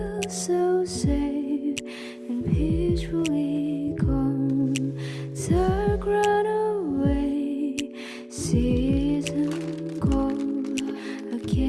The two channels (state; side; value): identical; both; correlation 1.00